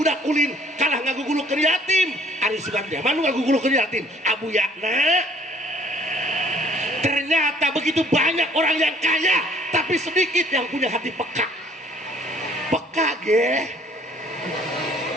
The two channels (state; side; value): normal; both; correlation 0.58